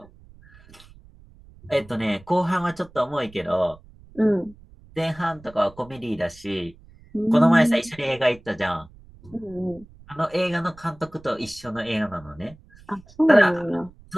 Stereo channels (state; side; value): noise; right; rumble, 24 dB below the sound